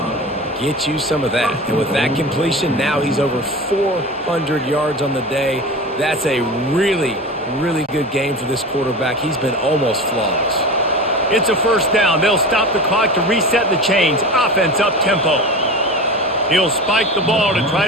Get you some of that. And with that completion, now he's over 400 yards on the day. That's a really, really good game for this quarterback. He's been almost flawless. It's a 1st down. They'll stop the clock to reset the chains. Offense up-tempo. He'll spike the ball to try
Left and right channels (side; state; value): both; normal; correlation 0.30